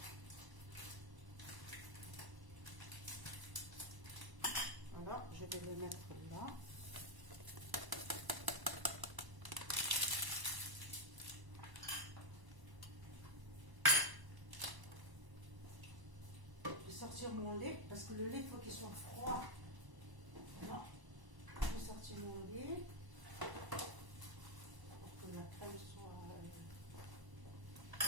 Voilà, je vais le mettre là. Sortir mon lait parce que le lait il faut qu'il soit froid. Voilà. Je vais sortir mon lait pour que la crème soit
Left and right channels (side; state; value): left; late; 1.1 ms